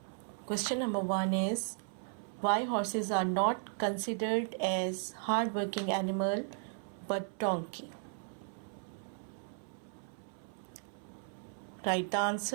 Question number 1 is, why horses are not considered as hard-working animal but donkey? Write the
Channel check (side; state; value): left; silent; 54 dB below the other